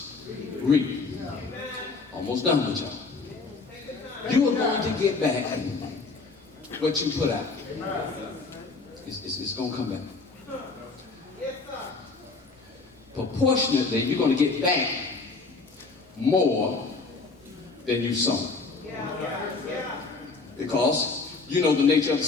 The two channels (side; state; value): right; quieter; 4.0 dB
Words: reap. Almost done with y'all. You are going to get back what you put out. It's going to come back. Proportionately, you're going to get back more than you sown. Because you know the nature of the